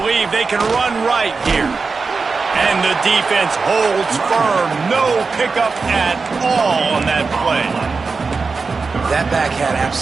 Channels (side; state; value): left; quieter; 4.5 dB